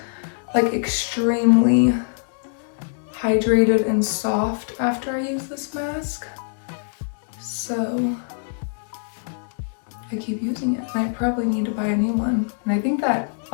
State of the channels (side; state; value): right; silent; 62 dB below the other